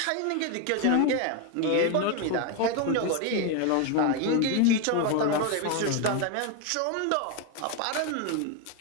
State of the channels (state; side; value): different; both; correlation 0.02